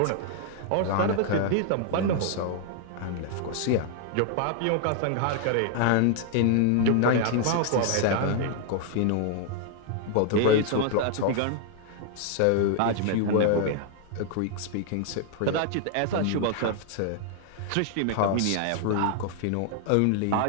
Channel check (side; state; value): both; different; correlation 0.00